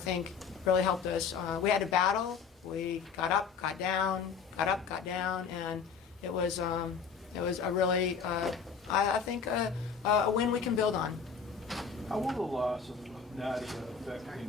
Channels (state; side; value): quieter; right; 6.1 dB